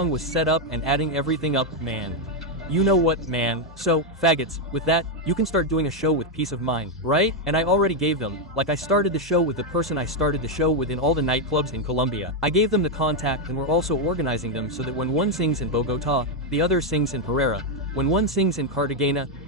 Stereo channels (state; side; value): normal; both; correlation 0.03